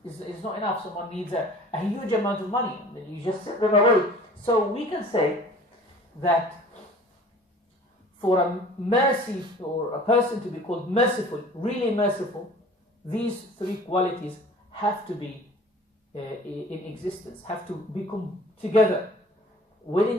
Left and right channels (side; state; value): both; normal; correlation 0.47